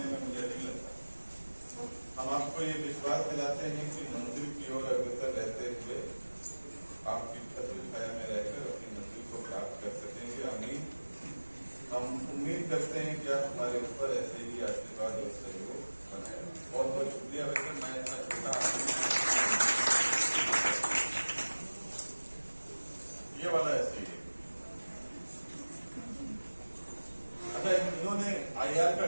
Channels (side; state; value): both; inverted; correlation -1.00